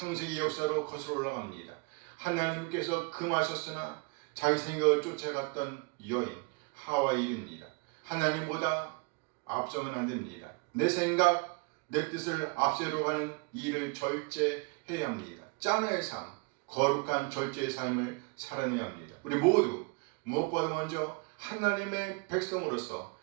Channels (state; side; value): quieter; left; 31.3 dB